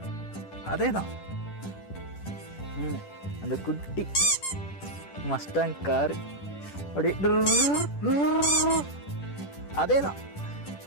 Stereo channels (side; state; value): right; late; 10 ms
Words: அதே தான். அந்த குட்டி மஸ்டாங் காரு அப்படியே அதே தான்.